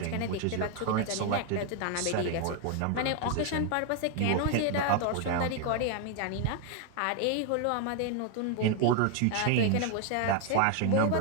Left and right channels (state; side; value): different; both; correlation 0.01